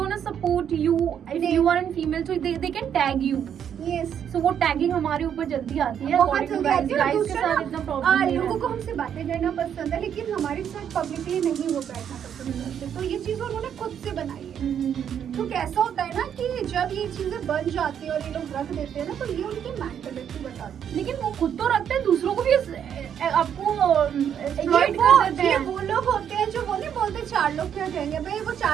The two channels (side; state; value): left; quieter; 8.8 dB